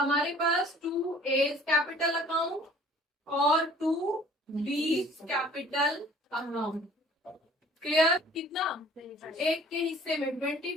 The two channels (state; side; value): normal; both; correlation 0.52